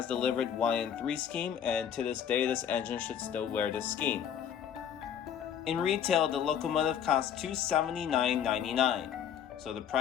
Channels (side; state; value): right; quieter; 8.8 dB